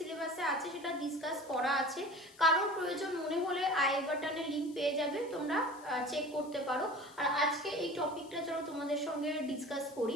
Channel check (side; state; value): left; noise; hiss, 23 dB below the sound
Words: আছে সেটা ডিসকাস করা আছে। কারোর প্রয়োজন মনে হলে আই বাটনে লিঙ্ক পেয়ে যাবে, তোমরা চেক করতে পারো। আর আজকে এই টপিকটা চলো তোমাদের সঙ্গে ডিসকাস করি।